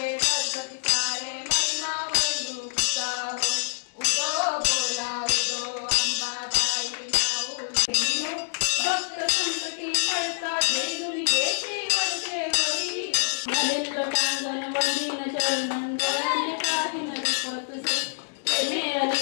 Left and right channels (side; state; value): right; silent; digital silence